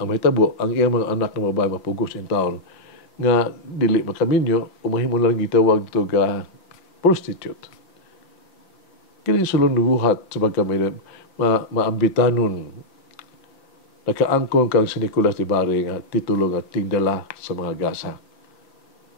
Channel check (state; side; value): late; right; 5.7 ms